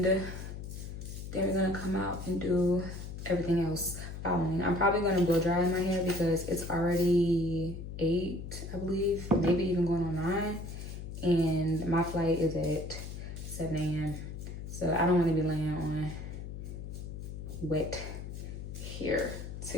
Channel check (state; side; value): noise; left; hum, 8 dB below the sound